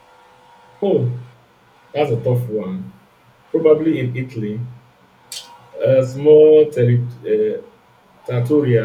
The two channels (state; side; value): identical; both; correlation 1.00